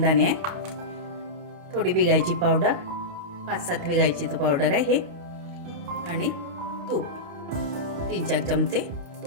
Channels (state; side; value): late; left; 28 ms